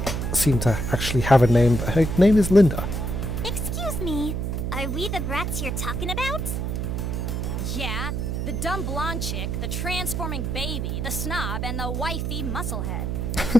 seem to actually have a name, that her name is Linda. Excuse me, are we the brats you're talking about? Yeah, the dumb blonde chick, the transforming baby, the snob, and the wifey musclehead.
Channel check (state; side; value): noise; right; hum, 1 dB below the sound